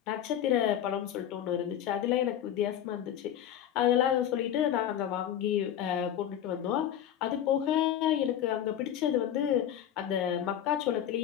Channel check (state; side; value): quieter; right; 10.5 dB